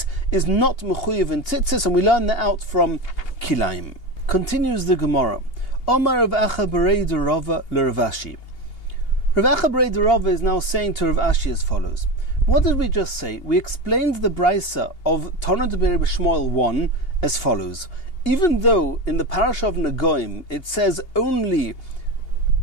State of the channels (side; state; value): right; late; 2.8 ms